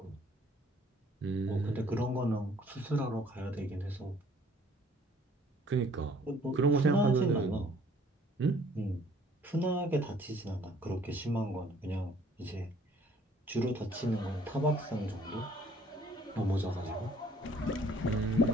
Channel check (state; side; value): normal; both; correlation 0.58